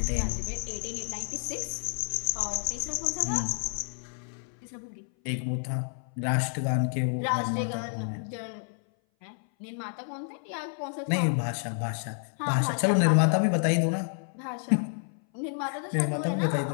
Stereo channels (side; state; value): right; silent; 57 dB below the other